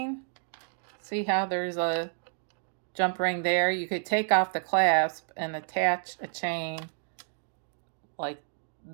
See how there's a jump ring there? You could take off the clasp and attach a chain like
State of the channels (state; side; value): silent; left; digital silence